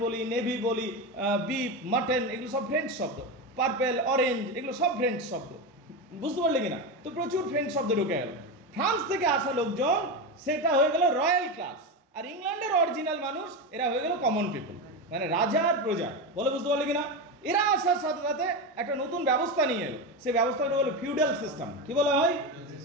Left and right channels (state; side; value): normal; both; correlation 0.16